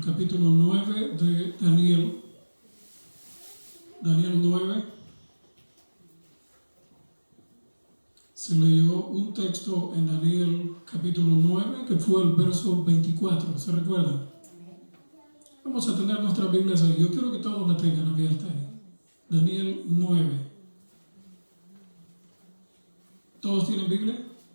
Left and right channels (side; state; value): both; inverted; correlation -1.00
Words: capítulo 9 de Daniel. Daniel 9. Se leyó un texto en Daniel capítulo 9 que fue el verso 24, ¿se recuerdan? Vamos a tener nuestras Biblias ahí. Yo quiero que todos la tengan abierta ahí. Daniel 9. ¿Todos tienen Biblia?